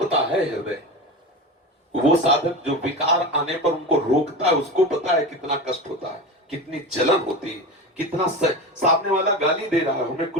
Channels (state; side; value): normal; both; correlation 0.26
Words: है हृदय। वो साधक जो विकार आने पर उनको रोकता है, उसको पता है कितना कष्ट होता है, कितनी जलन होती है, कितना सामने वाला गाली दे रहा है, हमें